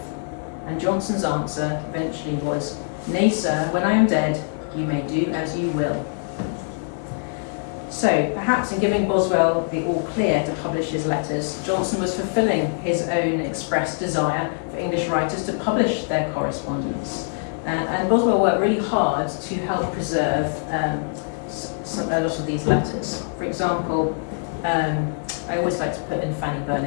And Johnson's answer eventually was, "Nay, sir, when I am dead, you may do as you will." So, perhaps in giving Boswell the all clear to publish his letters, Johnson was fulfilling his own expressed desire for English writers to publish their correspondence. And Boswell worked really hard to help preserve a lot of these letters. For example, I always like to put in Fanny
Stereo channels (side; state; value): right; silent; digital silence